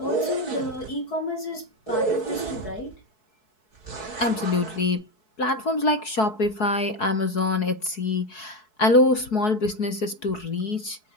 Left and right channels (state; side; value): late; right; 4.7 ms